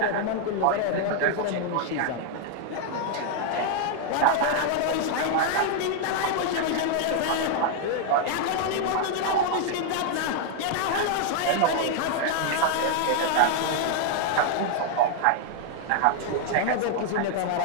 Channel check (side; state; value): both; different; correlation 0.00